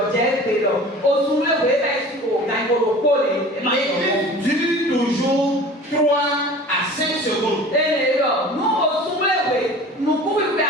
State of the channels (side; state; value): both; normal; correlation 0.41